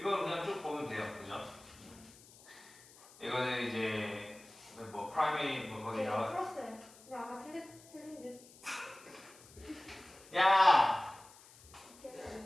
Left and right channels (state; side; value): noise; left; hiss, 22 dB below the sound